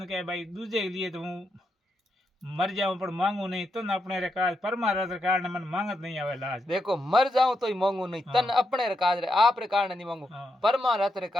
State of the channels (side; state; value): both; normal; correlation 0.83